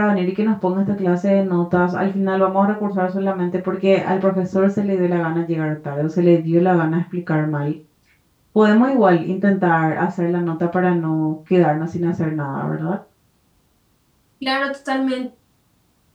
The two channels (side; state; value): both; identical; correlation 1.00